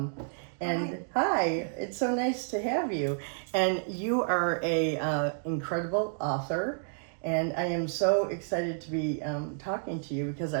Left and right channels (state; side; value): silent; left; digital silence